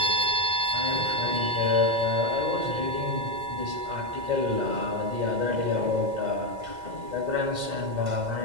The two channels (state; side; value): late; left; 2.0 ms